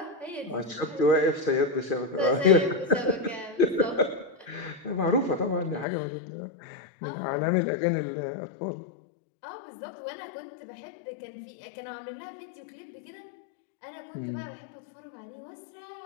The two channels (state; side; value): drops out; right; at 5.9 s